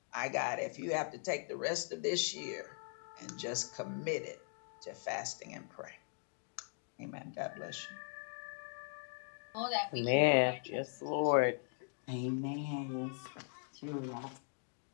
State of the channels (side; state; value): right; silent; 51 dB below the other